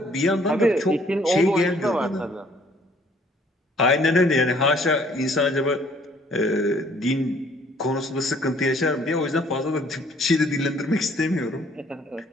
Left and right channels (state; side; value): normal; both; correlation 0.60